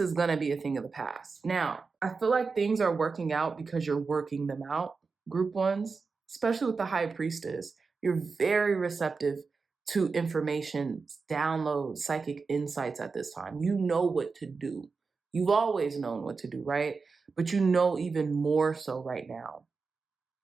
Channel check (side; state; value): left; quieter; 4.6 dB